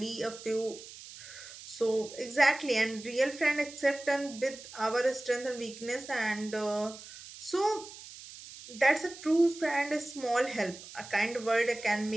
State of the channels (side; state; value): right; noise; hiss, 15 dB below the sound